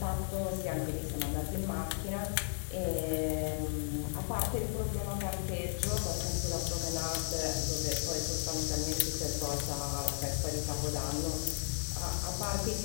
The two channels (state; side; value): silent; right; 55 dB below the other